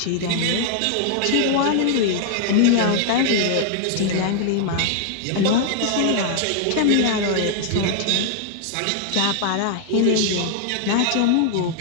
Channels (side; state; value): both; different; correlation -0.01